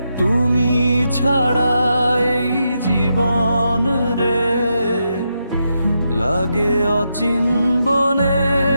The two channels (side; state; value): both; inverted; correlation -0.84